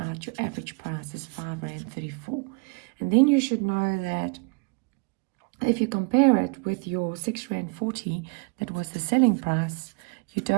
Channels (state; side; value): quieter; left; 34.8 dB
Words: your average price is R5.34. And then you should know that if you compare it with your R6.40, that was the selling price, you